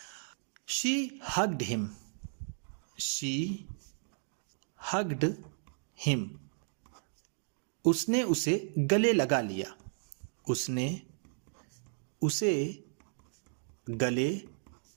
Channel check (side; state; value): left; silent; digital silence